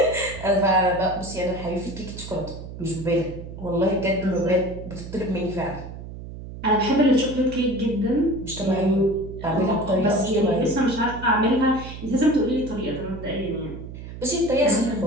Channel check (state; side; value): noise; right; hum, 11 dB below the sound